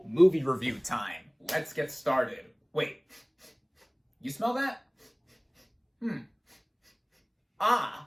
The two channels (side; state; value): both; identical; correlation 1.00